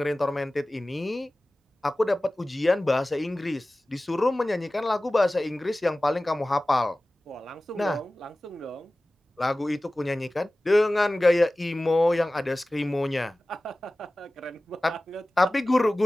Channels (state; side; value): normal; both; correlation 0.97